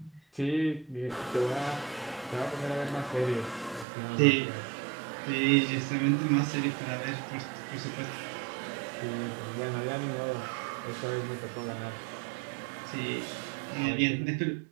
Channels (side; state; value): left; drops out; at 3.9 s